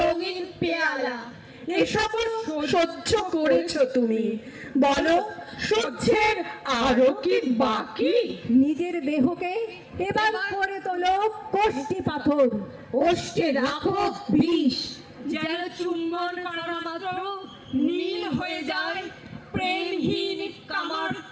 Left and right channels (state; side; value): identical; both; correlation 1.00